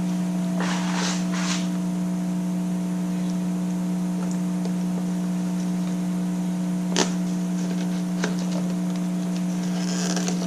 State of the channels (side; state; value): both; identical; correlation 1.00